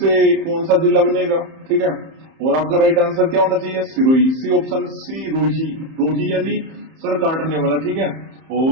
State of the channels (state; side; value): late; left; 31 ms